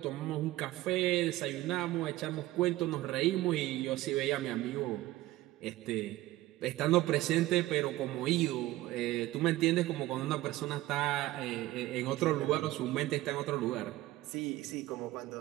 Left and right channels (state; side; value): quieter; left; 16.9 dB